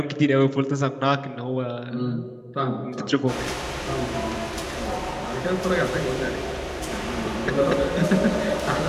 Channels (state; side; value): identical; both; correlation 1.00